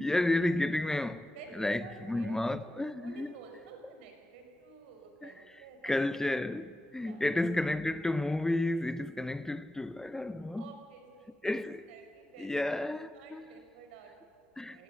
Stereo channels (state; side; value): normal; both; correlation 0.94